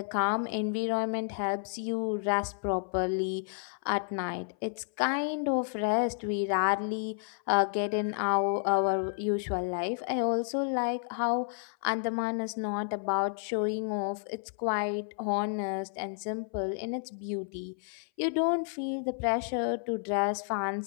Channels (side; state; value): right; silent; 57 dB below the other